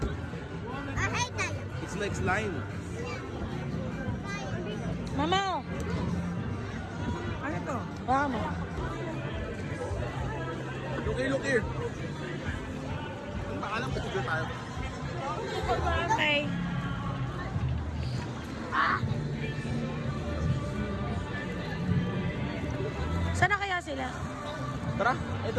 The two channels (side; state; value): both; identical; correlation 1.00